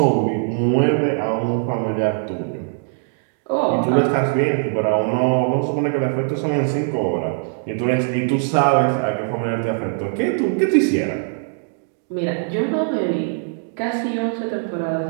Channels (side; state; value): left; silent; digital silence